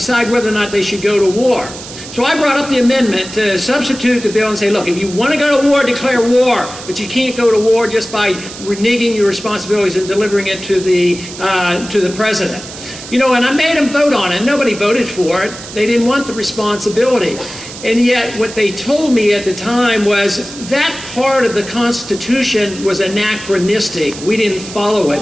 whether or not they should go to war. So I brought up the amendment to substitute the bill and say, look, if you want to go to war, declare war, but you can't go to war just by reneging your responsibilities and delivering it to the president. You know, and I made them vote on it. Nobody voted for it. They didn't want the responsibility. And yet what they told me at the time was that part of the Constitution was anachronistic. We didn't follow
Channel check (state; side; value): noise; right; hiss, 13 dB below the sound